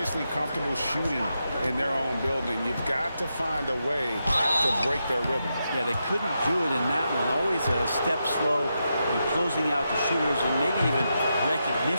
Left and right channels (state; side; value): inverted; both; correlation -0.86